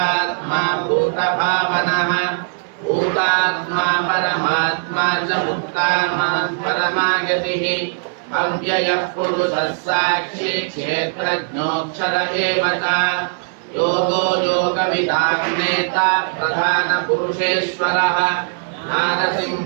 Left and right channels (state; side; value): silent; left; 66 dB below the other